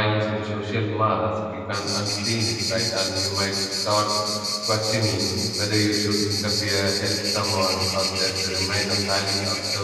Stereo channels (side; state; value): both; identical; correlation 1.00